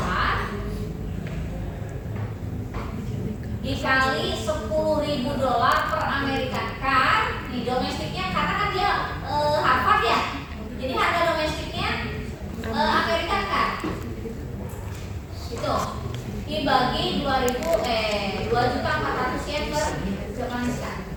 dikali $10.000 per American car. Nih domestiknya karena kan dia Harvard ya, jadi harga domestiknya American car itu dibagi 2.400 yen per Japanese car.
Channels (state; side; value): identical; both; correlation 1.00